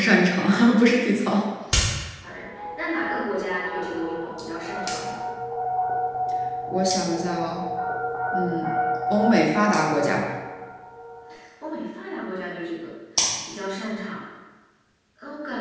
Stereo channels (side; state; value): both; identical; correlation 1.00